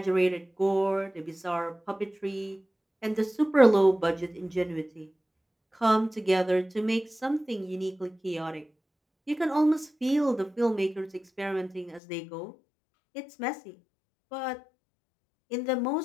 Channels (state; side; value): drops out; right; at 12.0 s